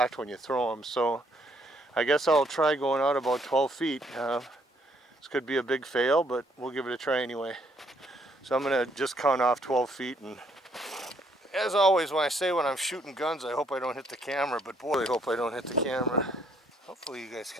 when you throw them. So I guess I'll try going out about 12 feet. This could be a big fail, but we'll give it a try anyway. So I'm gonna just count off 12 feet, and as always when I say when I'm shooting guns, I hope I don't hit the camera, but boy, I hope I don't hit the camera. Hopefully you guys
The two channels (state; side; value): normal; both; correlation 0.69